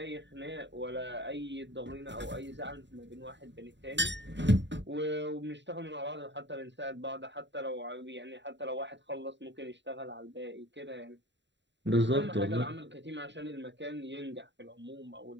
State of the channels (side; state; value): left; late; 0.52 ms